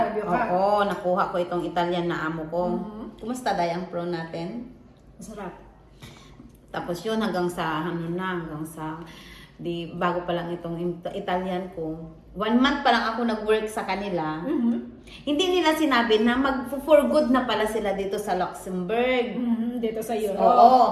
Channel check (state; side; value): identical; both; correlation 1.00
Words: nagpa-interview ka? nakuha ko itong Italian na amo ko. Kumusta day ang pro natin? Masarap. Tapos yun, hanggang sa, bago pa lang itong Italian ko, 1 month pa lang ako nag-work sa kanila, hindi nila sinabi na for good na pala sila dito sa Luxembourg. Dito sa Europe.